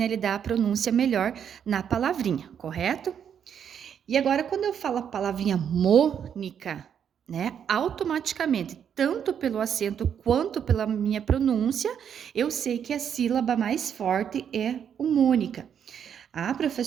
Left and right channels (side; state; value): left; quieter; 8.3 dB